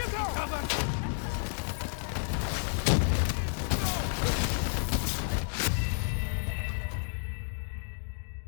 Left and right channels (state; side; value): silent; right; digital silence